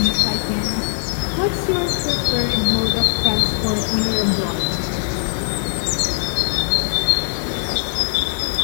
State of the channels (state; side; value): silent; right; digital silence